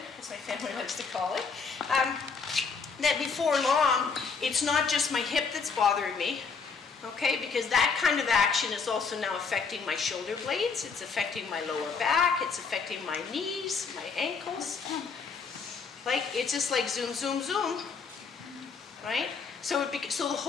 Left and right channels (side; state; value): right; quieter; 5.3 dB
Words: as my family likes to call it, that before long, it's not just my hip that's bothering me, okay? Because that kind of action is also now affecting my shoulder blades, it's affecting my lower back, it's affecting my knees, my ankles. Like, it's just like zoom, zoom, zoom, right? So so the